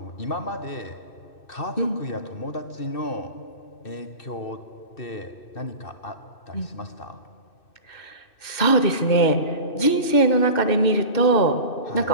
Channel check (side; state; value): right; late; 2.6 ms